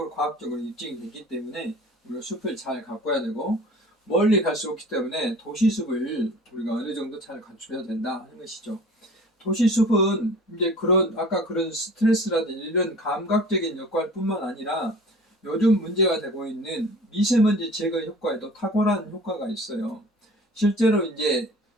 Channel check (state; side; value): normal; both; correlation 0.44